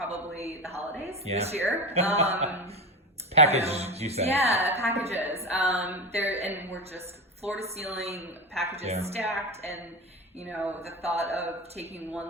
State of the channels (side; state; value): both; normal; correlation 0.21